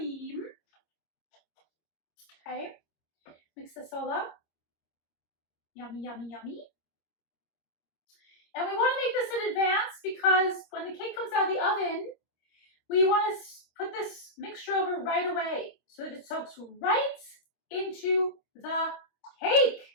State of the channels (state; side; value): late; right; 26 ms